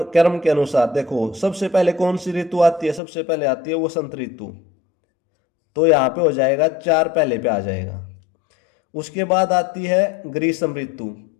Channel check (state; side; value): drops out; right; at 3.0 s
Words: के अनुसार। देखो सबसे पहले कौन सी ऋतु आती है, सबसे पहले आती है वसंत ऋतु, तो यहाँ पे हो जाएगा 4 पहले पे आ जाएगा। उसके बाद आती है ग्रीष्म ऋतु,